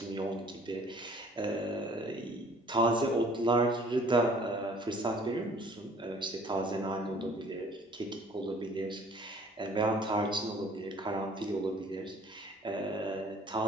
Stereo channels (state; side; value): normal; both; correlation 0.55